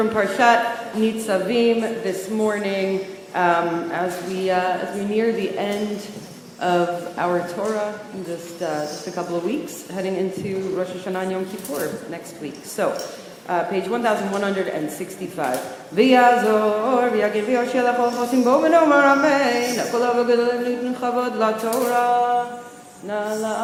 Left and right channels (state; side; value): identical; both; correlation 1.00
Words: Parshat Nitzavim this morning, as we near the end of our Torah in just a couple of weeks, heading into Rosh Hashanah and Yom Kippur next week. So, page 1165. V'yazor v'yagir v'yoshel achol chosim bo v'nomar amen. Kol ha'v'gedolim nitnu chavod la'Torah. Na